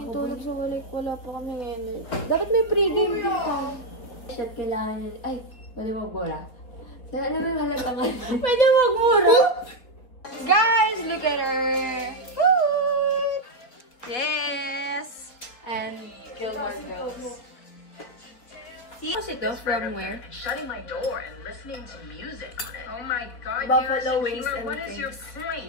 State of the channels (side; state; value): right; late; 4.1 ms